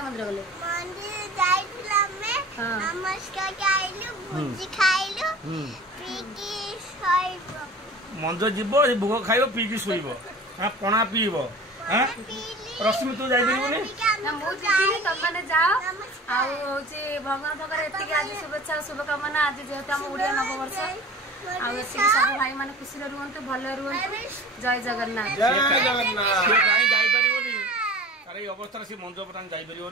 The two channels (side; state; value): both; normal; correlation 0.40